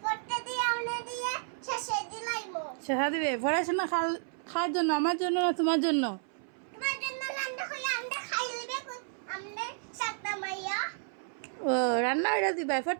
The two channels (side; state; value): left; silent; 57 dB below the other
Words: ফটটা দিয়ে আমরা দিয়ে শাসা দিলাইমো। সাসা দিবে পড়াশোনা খাওয়ার জন্য, আমার জন্য না তোমার জন্য? তোমার জন্য রান্না হলে আমরা খাই লইবে আমরা সাতটা মাইয়া। ও রান্না হইরা দিবা